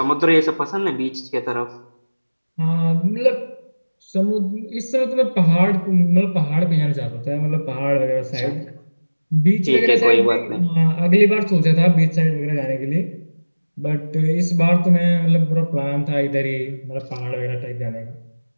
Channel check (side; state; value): both; inverted; correlation -1.00